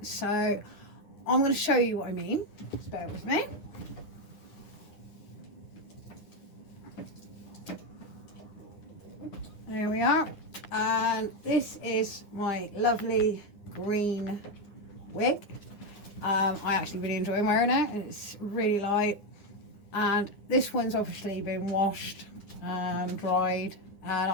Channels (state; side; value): late; right; 9.8 ms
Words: So I'm going to show you what I mean. Just bear with me. There we are, and this is my lovely green wig. I actually really enjoy wearing it. It's really light, and this one's obviously been washed and dried, and